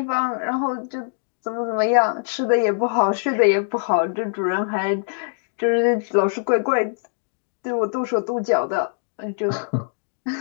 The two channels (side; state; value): right; silent; digital silence